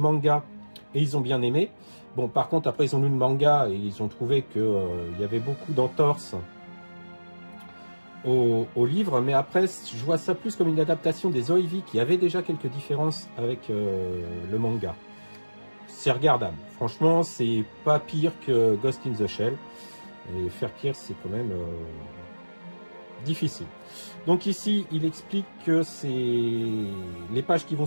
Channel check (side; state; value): both; inverted; correlation -1.00